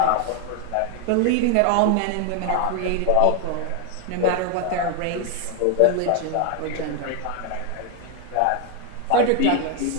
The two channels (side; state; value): both; different; correlation 0.01